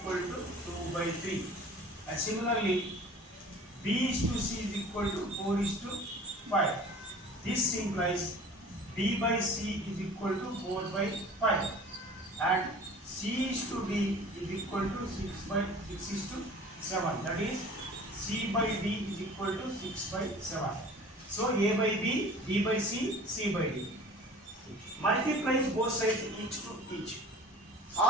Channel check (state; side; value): normal; both; correlation 0.44